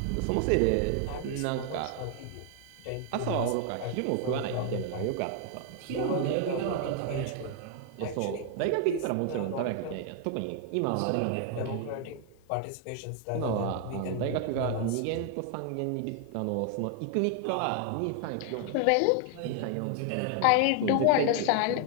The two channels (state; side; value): different; both; correlation 0.00